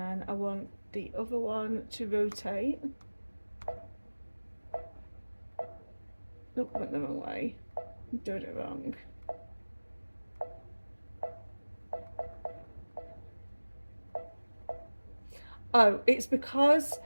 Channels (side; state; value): both; inverted; correlation -1.00